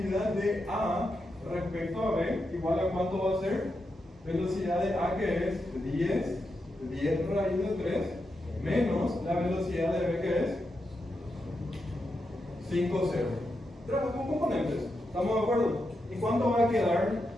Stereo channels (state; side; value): normal; both; correlation 0.86